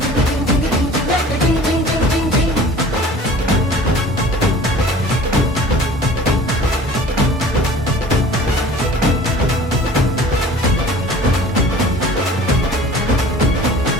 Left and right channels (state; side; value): normal; both; correlation 0.45